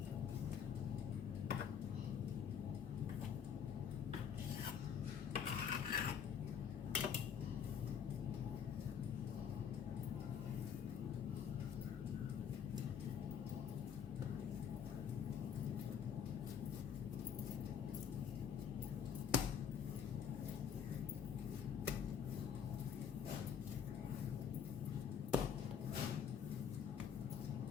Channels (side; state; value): right; quieter; 7.7 dB